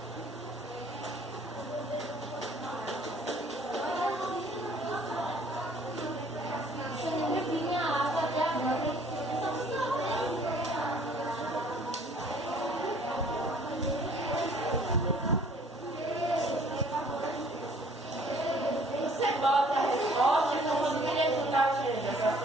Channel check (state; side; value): normal; both; correlation 0.57